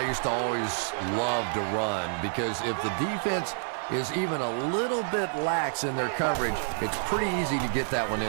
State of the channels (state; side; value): silent; left; digital silence